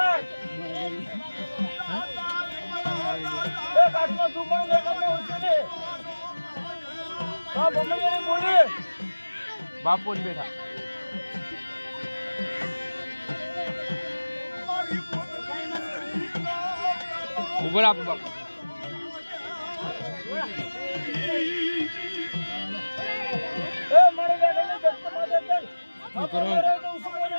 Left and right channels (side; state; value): both; inverted; correlation -1.00